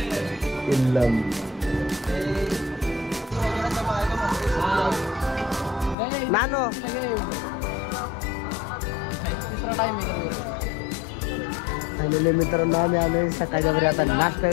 नानो फायनली मित्रांनो आम्ही आलोय सकाळच्या बरी आता नाश्ता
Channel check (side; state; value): right; drops out; at 6.0 s